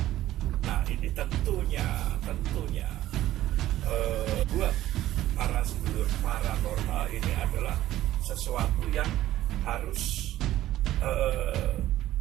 Nah ini tentunya buat para sedulur paranormal ini adalah sesuatu yang harus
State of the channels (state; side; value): quieter; left; 14.2 dB